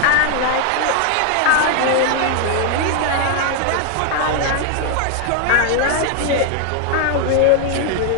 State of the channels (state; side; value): different; both; correlation 0.00